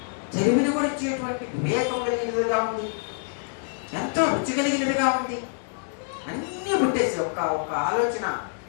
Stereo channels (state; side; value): silent; right; digital silence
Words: తెలివిని కూడా ఇచ్చేటువంటి వివేకం కలిగినదిగా ఉంది, ఎంతో రుచి కలిగినదిగా ఉంది. అన్నీ పుట్టేసి ఒక ఆలోచన